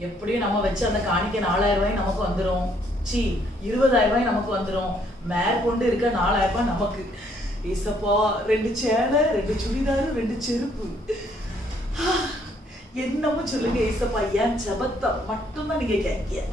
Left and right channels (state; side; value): normal; both; correlation 0.67